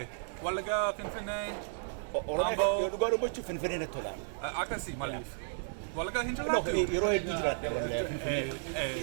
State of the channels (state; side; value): silent; left; digital silence